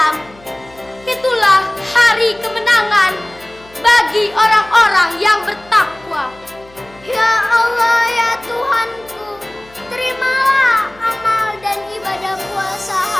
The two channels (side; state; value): left; noise; hum, 26 dB below the sound